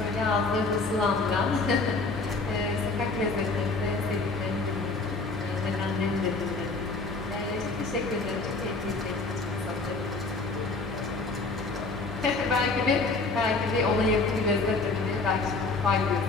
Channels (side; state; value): right; quieter; 3.7 dB